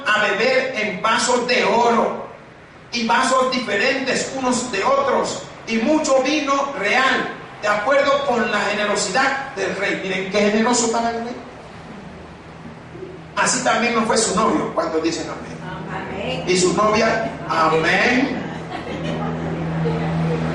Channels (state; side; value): identical; both; correlation 1.00